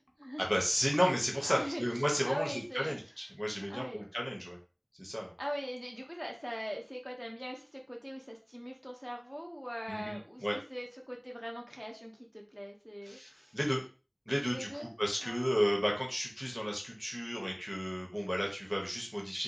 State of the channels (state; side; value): identical; both; correlation 1.00